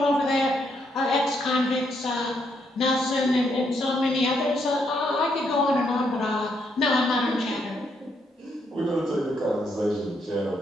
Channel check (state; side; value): normal; both; correlation 0.76